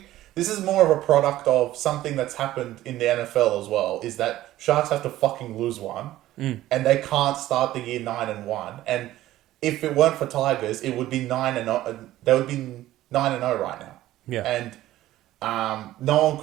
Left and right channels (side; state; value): left; quieter; 14.8 dB